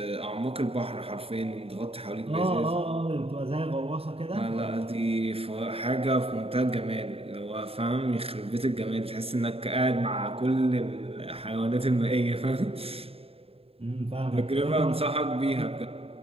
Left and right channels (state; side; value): late; left; 0.28 ms